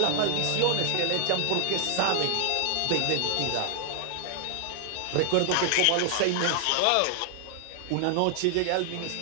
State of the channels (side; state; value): both; different; correlation 0.00